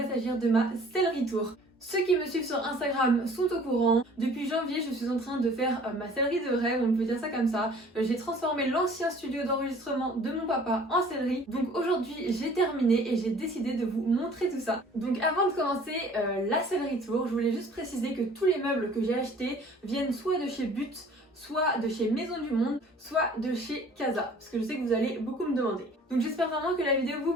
s'agir de ma sellerie tour. Ceux qui me suivent sur Instagram sont au courant. Depuis janvier, je suis en train de faire ma sellerie de rêve, on peut dire ça comme ça. J'ai transformé l'ancien studio d'enregistrement de mon papa en sellerie. Donc aujourd'hui, j'ai terminé et j'ai décidé de vous montrer tout ça. Donc avant de commencer la sellerie tour, je voulais juste préciser que tous les meubles que j'ai achetés viennent soit de chez But, soit de chez Maison du Monde, soit de chez Casa, parce que je sais que vous allez beaucoup me demander. Donc j'espère vraiment que la vidéo vous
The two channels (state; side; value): normal; both; correlation 0.51